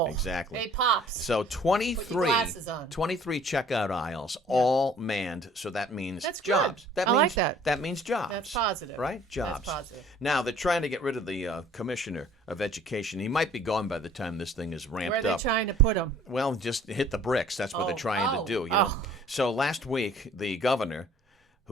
Exactly. Hey, Pops. So 23, Put your glasses on. 23 checkout aisles, all manned. So that means That's good. jobs. I like that. That means jobs. That's positive. Right? Jobs. That's positive. Now, they're trying to get rid of the commissioner of education. He might be gone by the time this thing is ramped Where are they up. trying to put them? Well, just hit the bricks. That's what they're trying to do. Oh. So last week, the governor,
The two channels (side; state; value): both; normal; correlation 0.54